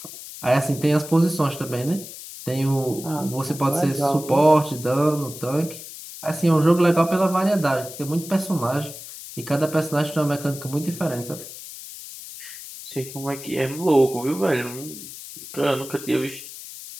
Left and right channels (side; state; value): left; noise; hiss, 13 dB below the sound